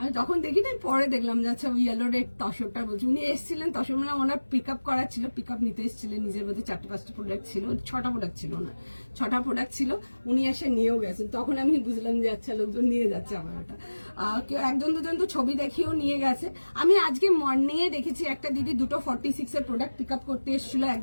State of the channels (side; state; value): both; inverted; correlation -1.00